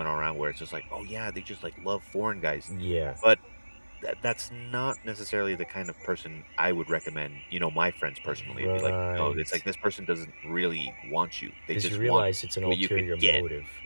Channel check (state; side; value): inverted; both; correlation -1.00